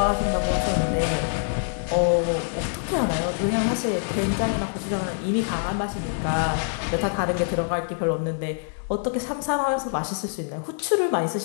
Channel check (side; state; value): right; silent; digital silence